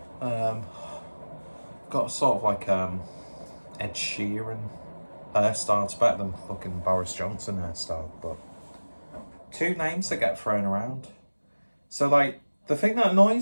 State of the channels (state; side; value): inverted; both; correlation -1.00